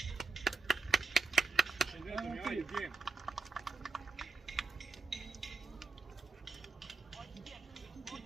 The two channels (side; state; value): left; quieter; 4.3 dB